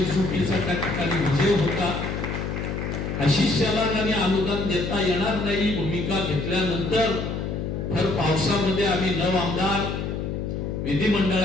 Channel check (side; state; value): left; noise; hum, 3 dB below the sound